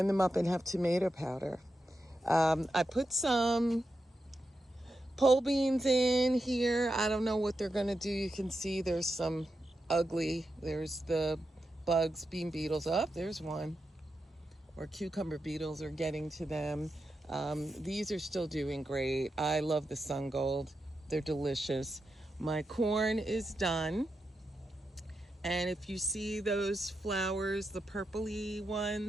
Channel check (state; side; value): normal; both; correlation 0.88